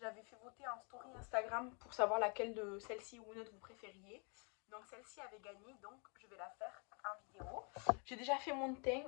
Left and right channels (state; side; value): quieter; right; 36.5 dB